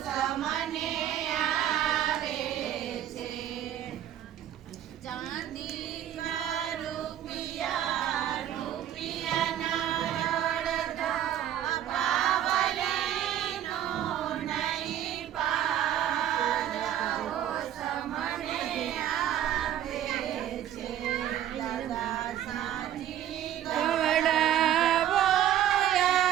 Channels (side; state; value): left; quieter; 11.2 dB